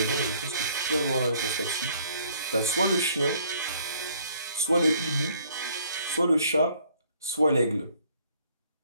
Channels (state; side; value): inverted; both; correlation -0.62